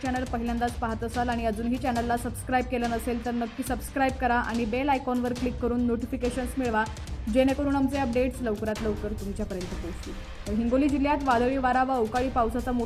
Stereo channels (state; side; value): identical; both; correlation 1.00